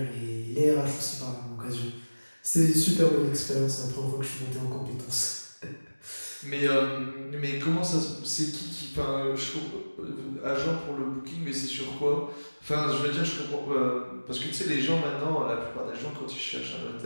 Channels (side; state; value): both; inverted; correlation -1.00